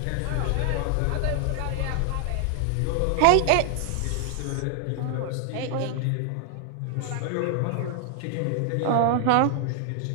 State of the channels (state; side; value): different; both; correlation 0.00